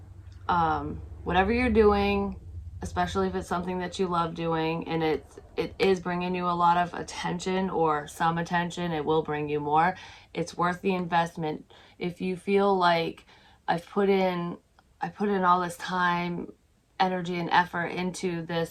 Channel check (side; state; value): both; identical; correlation 1.00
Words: whatever you're doing, especially if it's something that you love doing and it is bringing you a lot of attention or some attention, it will bring you more. It's worth the investment. If you feel like I put in all this time, energy, and effort into this